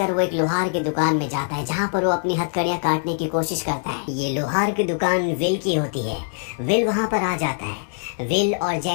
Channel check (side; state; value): right; silent; digital silence